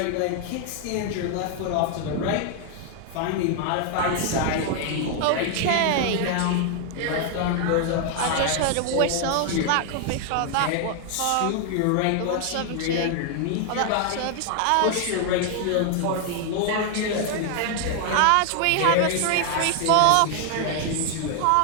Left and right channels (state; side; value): different; both; correlation 0.00